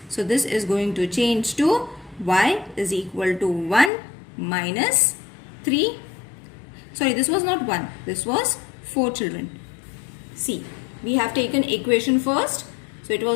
So, this is going to change to y is equal to 1 minus 3. Sorry, this was not 1. This was 4, children. See, we have taken equation first. So, it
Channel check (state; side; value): drops out; right; at 3.9 s